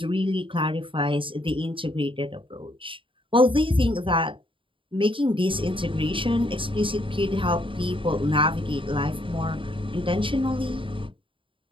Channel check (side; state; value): left; late; 0.25 ms